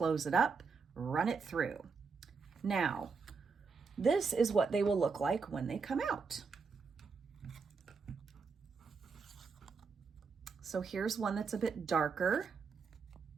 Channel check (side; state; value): left; quieter; 5.1 dB